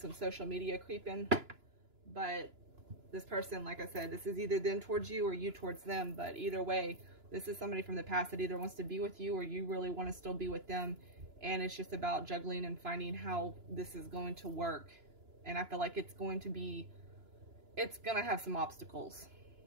social media creeping. But this person, like I said, this is either them towards you or you towards them. But either way, this is somebody from the past that either wants to be with you or you really want to still be with them. And it's just about juggling and finding how this is going to work. And I feel like it's going to have some obstacles.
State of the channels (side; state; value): left; late; 2.9 ms